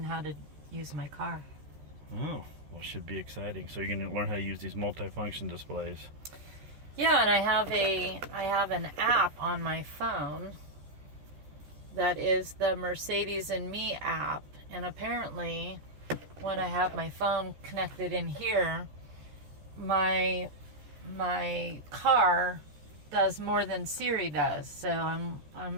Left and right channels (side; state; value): left; late; 13 ms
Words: how to use my car. Oh, well, it should be exciting. So you're going to learn how to use these multifunction displays. Yeah, and I have an app on my phone that is the Mercedes and Me app. And apparently, when I have my phone connected in here, my car does more than Siri does. So I'm